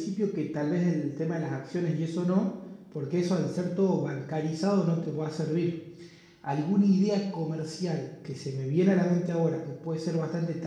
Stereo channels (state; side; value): identical; both; correlation 1.00